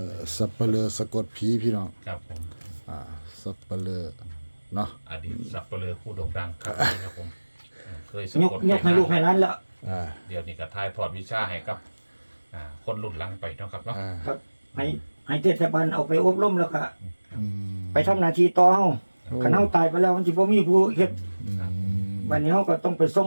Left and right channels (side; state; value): both; inverted; correlation -1.00